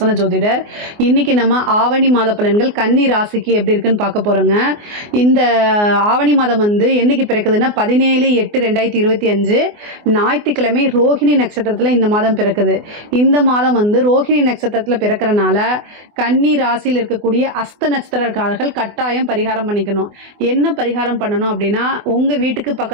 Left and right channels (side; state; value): left; late; 24 ms